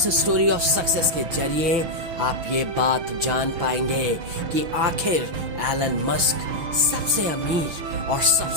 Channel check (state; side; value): late; left; 6.3 ms